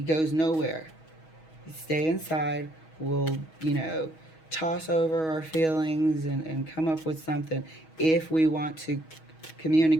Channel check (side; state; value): right; late; 6.3 ms